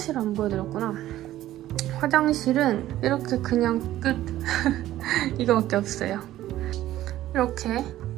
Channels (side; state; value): left; quieter; 14.1 dB